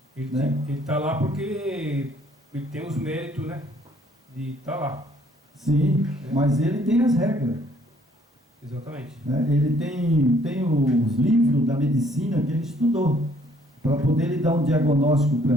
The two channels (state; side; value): normal; both; correlation 0.63